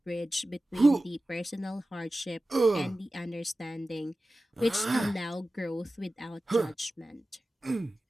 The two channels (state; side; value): normal; both; correlation 0.95